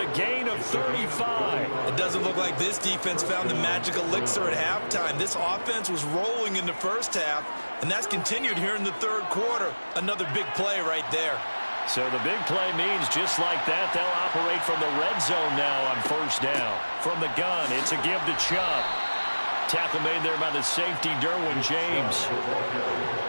gain of 35. It doesn't look like this defense found the magic elixir at halftime. This offense was rolling in the first half, and that's continued here in the third quarter. Another big play right there. So the big play means just like that, they'll operate from the red zone now on first down. From the gun, it's a give to Chubb. Tackle made there by the safety, Derwin James.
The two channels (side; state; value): both; inverted; correlation -1.00